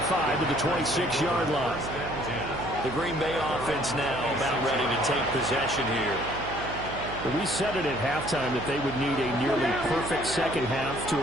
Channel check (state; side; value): noise; right; hum, 10 dB below the sound